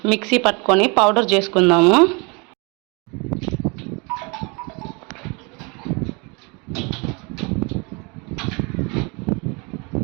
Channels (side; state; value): left; quieter; 30.3 dB